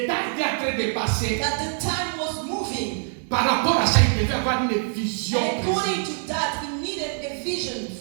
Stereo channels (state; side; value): silent; left; digital silence